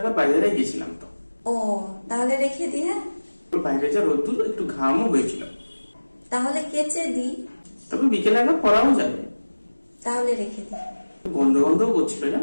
বাইরে গেছিলাম তো। ও, তাহলে রেখে দি। হ্যাঁ, বাইরে যা রোদ্দুর, একটু ঘামও হয়েছিল। তাহলে কেচে দি। তবে বিকেলে একবার পরাও যাবে। তাহলে রেখে দি। গন্ধ গন্ধও করছিল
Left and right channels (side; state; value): both; inverted; correlation -1.00